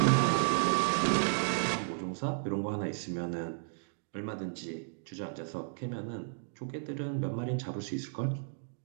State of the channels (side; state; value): left; silent; digital silence